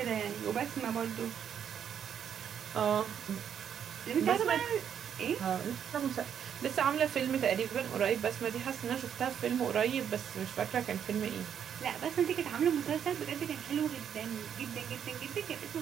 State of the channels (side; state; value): left; quieter; 8.6 dB